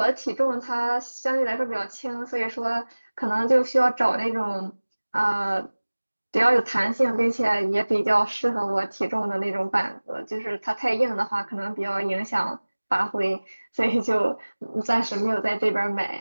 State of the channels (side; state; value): both; inverted; correlation -1.00